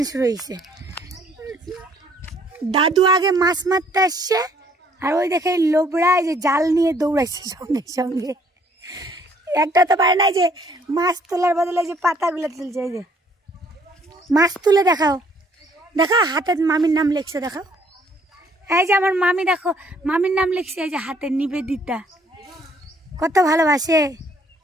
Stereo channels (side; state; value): both; normal; correlation 0.63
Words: শুরু হয়েছে। দাদু আগে মাছ মারতে আসছে, আর ওই দেখে লোবরা এই যে জাল নিয়ে দৌড়াইছে সঙ্গে সঙ্গে। একটা তো পারে না যে মাছ তোলার বদলে যে পাতাগুলো তুলছে। এই যে মাছ তুলে দেখাও, দেখাও হাতে মামির নাম লিখছে, দেখাও। এই যে আমার মামি, দেখো মামির নাম লিখছে, এই যে হাতে নিবেদিতা, কত ভালোবাসে।